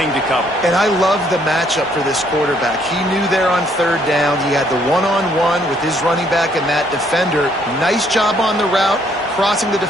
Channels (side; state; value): both; normal; correlation 0.67